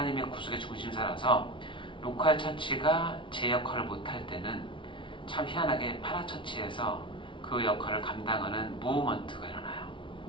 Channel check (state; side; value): late; right; 0.25 ms